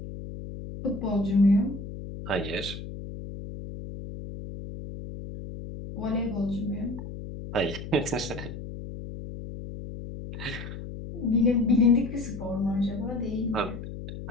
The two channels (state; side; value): noise; left; hum, 10 dB below the sound